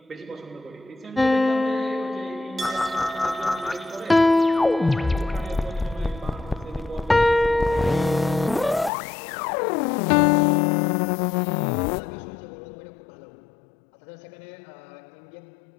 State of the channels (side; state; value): right; drops out; at 8.9 s